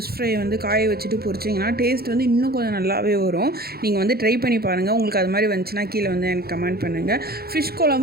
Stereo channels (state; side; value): late; left; 0.45 ms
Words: ஃப்ரை வந்து காய வச்சுட்டு பொரிச்சிங்கன்னா டேஸ்ட் வந்து இன்னும் கொஞ்சம் நல்லாவே வரும். நீங்கள் வந்து ட்ரை பண்ணி பாருங்கள். உங்களுக்கு அது மாதிரி வந்துச்சுன்னா கீழே வந்து எனக்கு கமெண்ட் பண்ணுங்கள். ஃபிஷ்